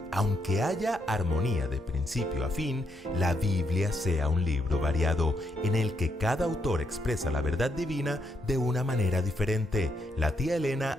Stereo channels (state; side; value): normal; both; correlation 0.77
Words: aunque haya armonía de principio a fin, la Biblia sea un libro variado, en el que cada autor expresa la verdad divina de una manera diferente. La tía